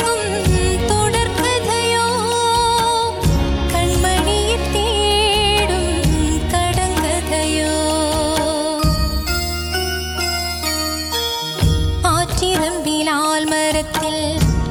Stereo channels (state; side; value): identical; both; correlation 1.00